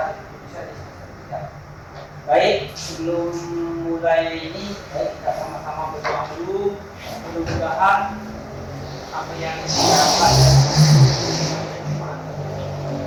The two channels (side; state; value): both; identical; correlation 1.00